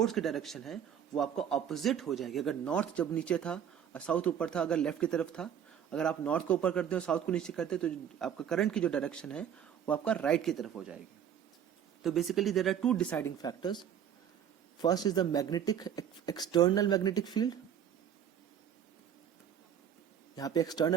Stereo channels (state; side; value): quieter; left; 9.0 dB